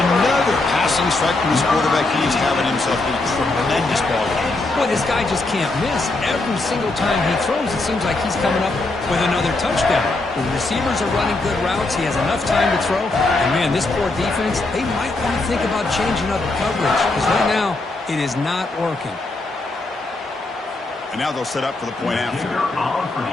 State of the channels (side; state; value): right; quieter; 3.1 dB